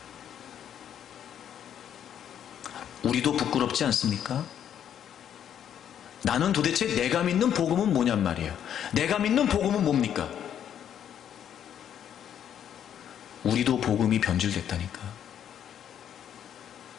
우리도 부끄럽지 않습니까? 나는 도대체 내가 믿는 복음은 뭐냔 말이에요. 내가 믿는 복음은 뭡니까? 우리도 복음이 변질됐다니까.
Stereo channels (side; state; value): right; quieter; 9.5 dB